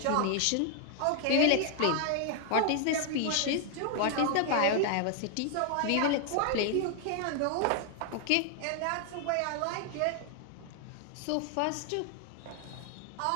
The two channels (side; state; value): both; different; correlation 0.00